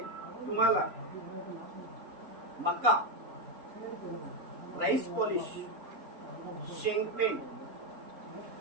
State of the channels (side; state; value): left; late; 3.9 ms